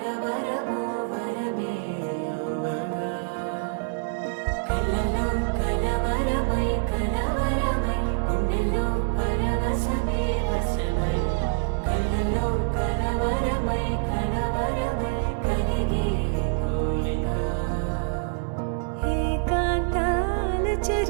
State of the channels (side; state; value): left; silent; digital silence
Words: వరమే యువగా కలలో కలవరమై కలవరమై గుండెలో పరవశమే వశమై కలలో కలవరమై కలవరమై కలిగే కోరిక ఏకాంతాల